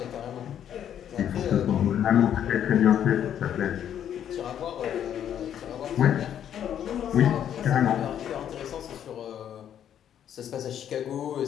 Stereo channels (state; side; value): quieter; right; 9.8 dB